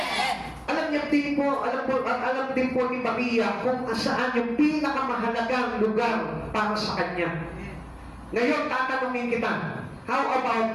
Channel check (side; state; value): both; identical; correlation 1.00